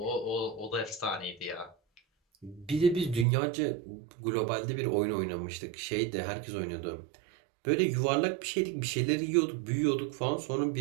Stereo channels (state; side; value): drops out; left; at 3.2 s